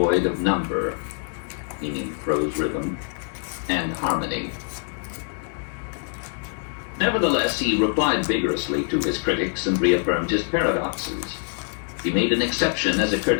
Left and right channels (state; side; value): silent; right; 62 dB below the other